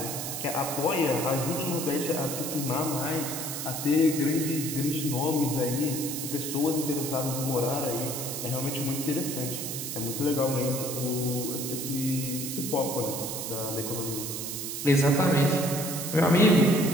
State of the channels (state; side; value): noise; right; hiss, 5 dB below the sound